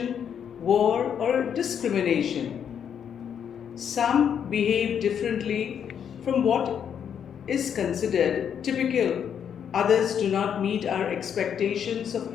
war or discrimination. Some behave differently from what is considered typical. Others do not meet our expectations of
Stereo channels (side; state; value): right; quieter; 8.2 dB